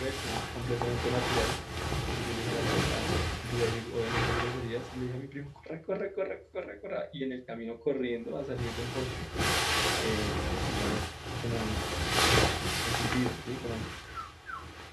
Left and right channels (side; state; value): both; identical; correlation 1.00